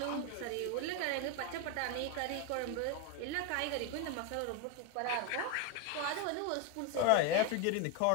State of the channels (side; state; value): both; different; correlation 0.02